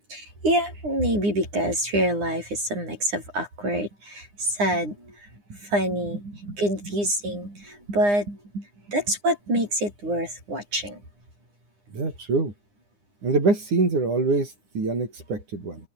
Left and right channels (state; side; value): late; left; 9.8 ms